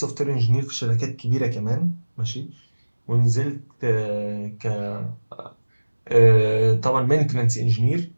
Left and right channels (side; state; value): both; inverted; correlation -1.00